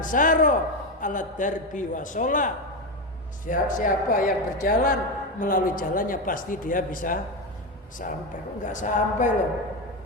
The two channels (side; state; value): both; normal; correlation 0.14